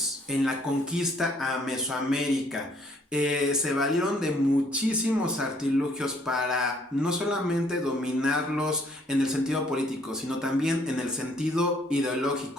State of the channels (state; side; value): normal; both; correlation 0.63